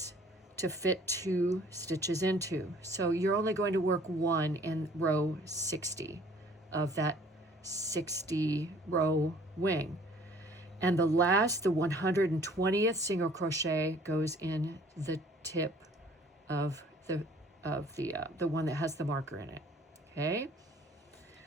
to fit 2 stitches into. So you're only going to work 1 in row 60 of that 60 row wing. And the last, the 120th single crochet goes in the tip of the one that has the marker in it. Okay.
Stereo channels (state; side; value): normal; both; correlation 0.55